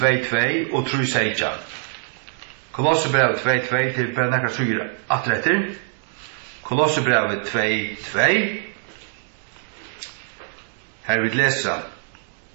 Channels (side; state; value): left; silent; digital silence